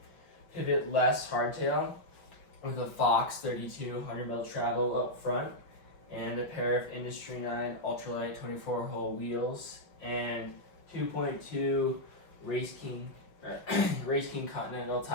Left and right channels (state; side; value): late; right; 5.6 ms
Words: pivot-less hardtail with a Fox 32 100 mil travel up front and a pair of Industry 9 Ultralight 24-hole wheels and 2.2 Race King Continental